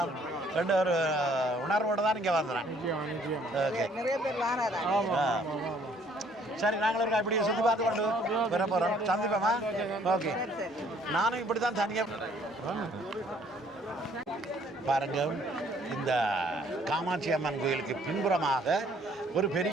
ரெண்டு ஒரு உணர்வோடு தான் இங்கே வந்துடுறேன். ஓகே, நிறைய பேர் சரி, நாங்களும் இருக்கா இப்படி சுற்றி பார்த்து கொண்டு வர போகிறோம். சந்திப்போமா? ஓகே. நானும் இப்படி தான் தனியாக பாருங்க. இந்த காமாட்சி அம்மன் கோயிலுக்கு பின்புறமாக ஒரு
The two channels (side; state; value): both; normal; correlation 0.62